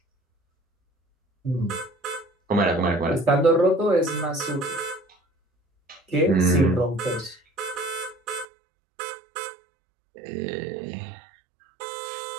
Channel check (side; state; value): left; drops out; at 8.5 s